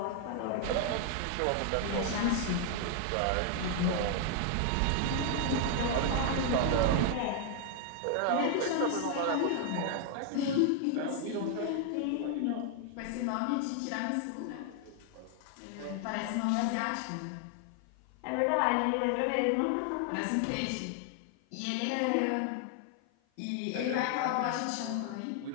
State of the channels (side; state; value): both; different; correlation 0.00